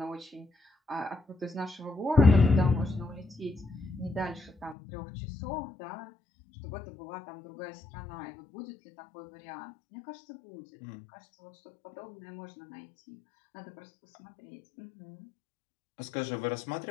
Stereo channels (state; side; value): drops out; right; at 4.8 s